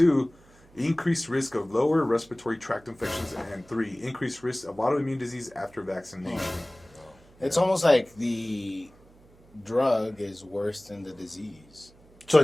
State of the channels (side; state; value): right; noise; hum, 27 dB below the sound